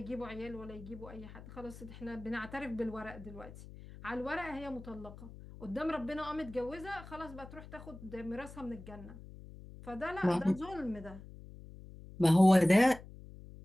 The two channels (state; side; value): noise; left; hum, 16 dB below the sound